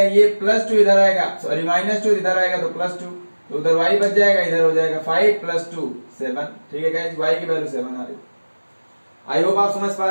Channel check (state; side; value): inverted; both; correlation -1.00